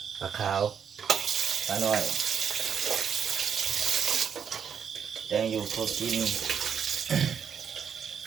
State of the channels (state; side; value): quieter; left; 7.2 dB